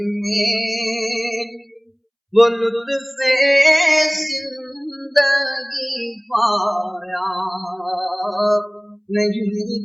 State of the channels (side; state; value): both; identical; correlation 1.00